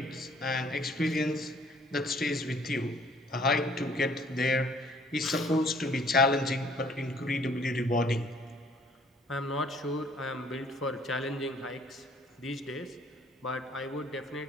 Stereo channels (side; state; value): both; normal; correlation 0.59